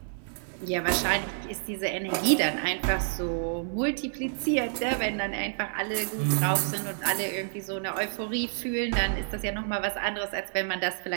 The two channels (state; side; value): silent; left; digital silence